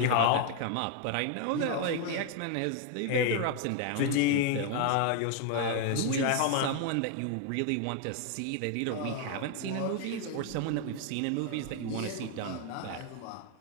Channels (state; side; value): different; both; correlation 0.00